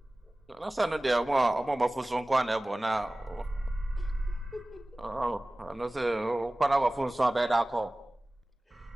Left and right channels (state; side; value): normal; both; correlation 0.98